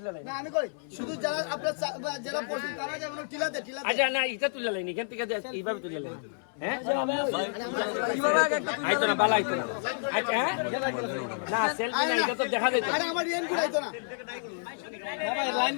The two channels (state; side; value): silent; right; 58 dB below the other